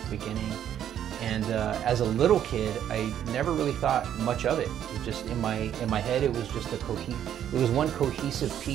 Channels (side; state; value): left; quieter; 10.2 dB